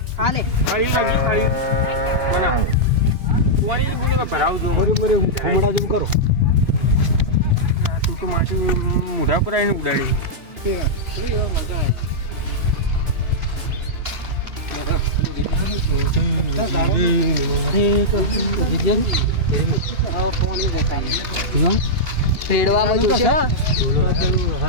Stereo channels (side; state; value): left; late; 2.8 ms